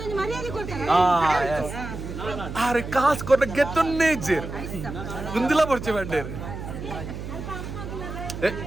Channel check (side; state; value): right; noise; hum, 8 dB below the sound